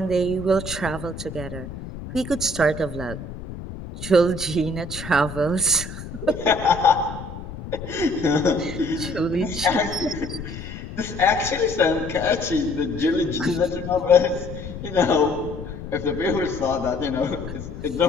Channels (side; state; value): left; noise; rumble, 10 dB below the sound